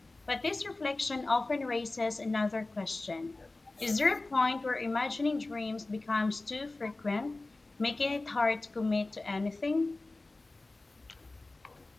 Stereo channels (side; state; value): right; quieter; 3.1 dB